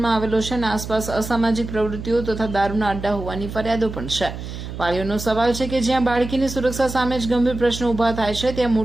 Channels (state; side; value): noise; right; hum, 9 dB below the sound